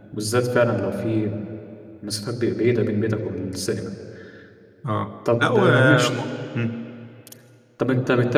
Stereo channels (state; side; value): identical; both; correlation 1.00